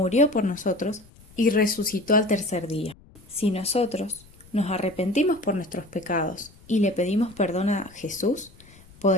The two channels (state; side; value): noise; left; rumble, 25 dB below the sound